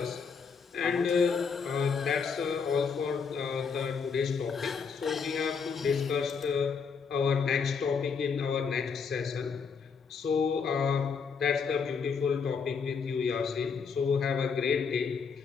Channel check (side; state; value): right; quieter; 5.8 dB